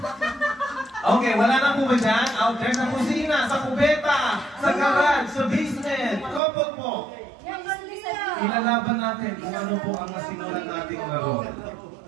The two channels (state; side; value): drops out; left; at 6.4 s